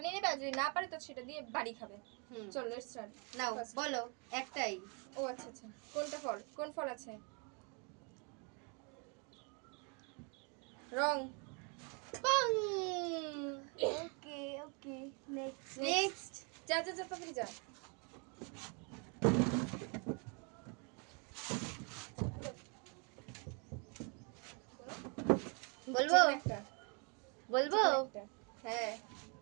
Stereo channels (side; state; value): left; quieter; 35.3 dB